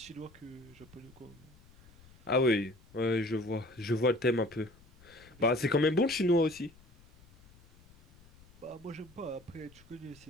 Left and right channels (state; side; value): noise; left; rumble, 26 dB below the sound